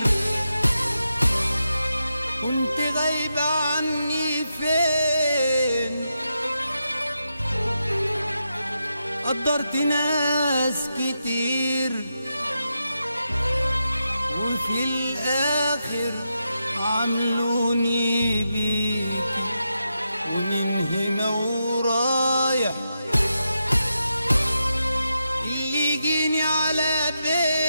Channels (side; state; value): both; inverted; correlation -0.86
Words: كنت غايبة عني فين؟ قدرت ناس كتير وفي الآخر عملوني بيكي، ومن هنا ورايح اللي يجيني على